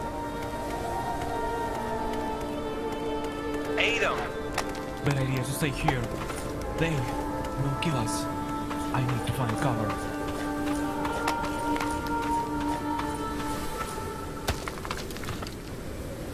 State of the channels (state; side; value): identical; both; correlation 1.00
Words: Adam! Bad idea to stay here. They will kill us. I need to find cover.